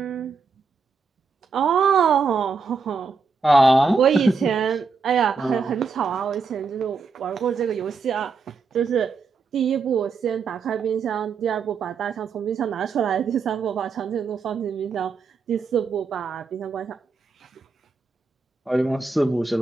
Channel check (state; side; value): quieter; left; 4.8 dB